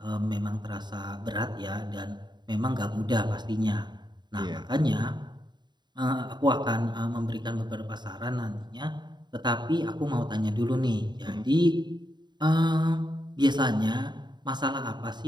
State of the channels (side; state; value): left; late; 0.21 ms